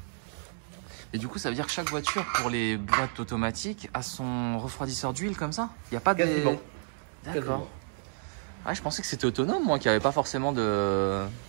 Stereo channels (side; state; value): left; silent; digital silence